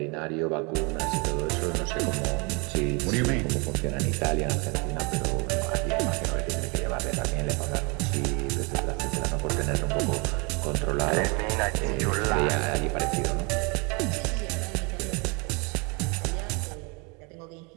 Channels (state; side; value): quieter; left; 30.7 dB